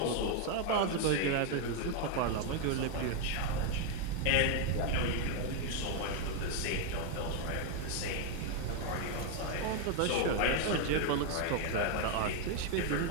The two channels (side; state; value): both; different; correlation 0.01